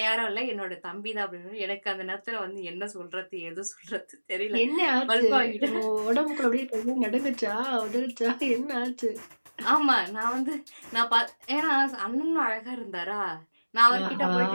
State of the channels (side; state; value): both; inverted; correlation -1.00